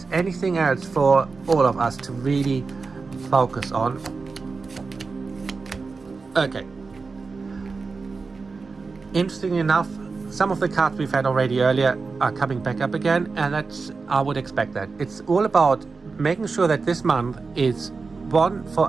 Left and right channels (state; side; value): quieter; left; 4.4 dB